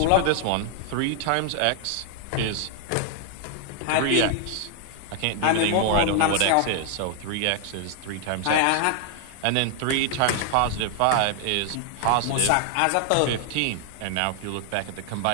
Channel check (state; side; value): different; both; correlation 0.00